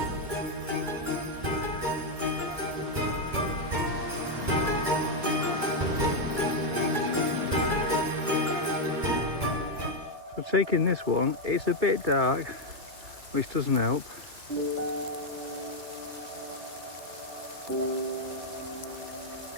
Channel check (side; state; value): left; late; 2.2 ms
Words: So taking this one, it's a bit dark, which doesn't help.